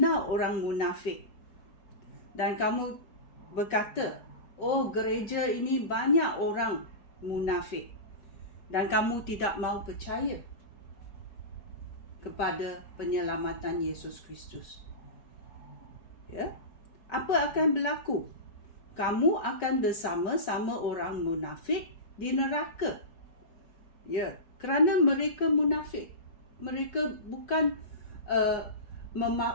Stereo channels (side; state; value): right; late; 4.7 ms